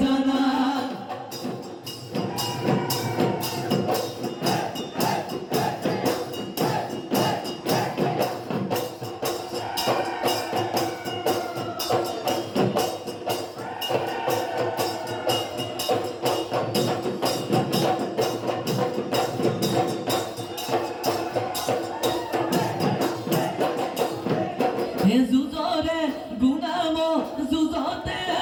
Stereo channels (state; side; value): identical; both; correlation 1.00